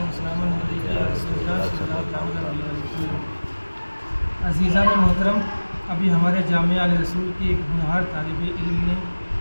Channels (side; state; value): both; inverted; correlation -1.00